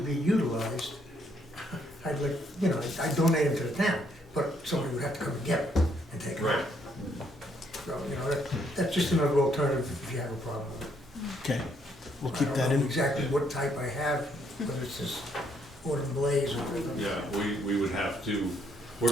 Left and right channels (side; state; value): both; normal; correlation 0.71